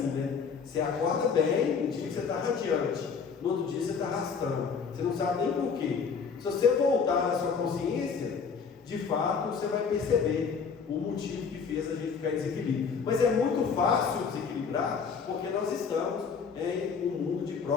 né? Você acorda bem, um dia que você está radiante, no outro dia você está arrastando, você não sabe nem por quê. Se você voltar na sua consciência, de fato você vai perceber o motivo que fez a gente ficar em desequilíbrio. Mas é muito fácil desequilibrar, porque nós estamos em um mundo de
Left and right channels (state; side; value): quieter; right; 5.9 dB